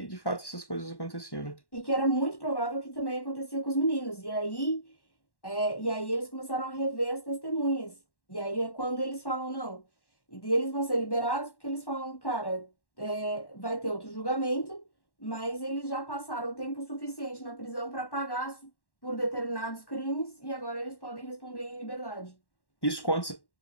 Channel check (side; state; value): right; late; 1.1 ms